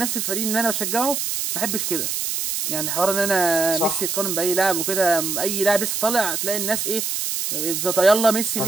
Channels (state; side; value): noise; right; hiss, 2 dB below the sound